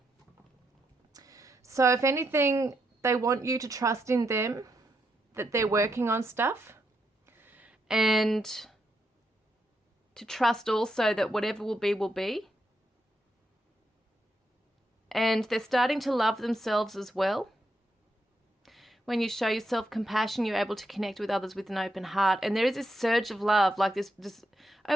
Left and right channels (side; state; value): both; normal; correlation 0.81